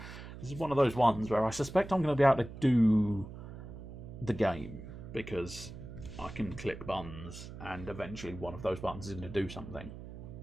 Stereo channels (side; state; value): right; noise; hum, 12 dB below the sound